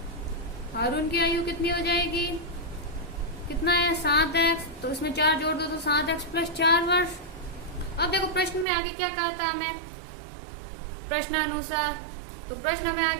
आयु कितनी हो जाएगी? कितना है? 7x। तो इसमें 4 जोड़ दो तो 7x प्लस 4 वर्ष। अब देखो प्रश्न में आगे क्या कहा था हमें, प्रश्नानुसार। तो प्रश्न में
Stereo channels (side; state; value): left; drops out; at 8.7 s